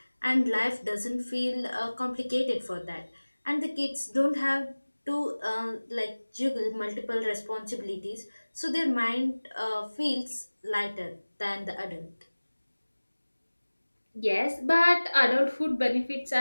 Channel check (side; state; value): both; inverted; correlation -1.00